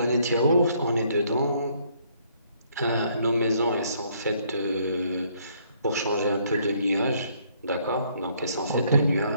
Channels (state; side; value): inverted; both; correlation -0.67